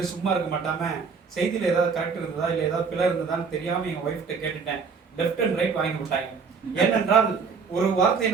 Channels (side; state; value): left; quieter; 5.5 dB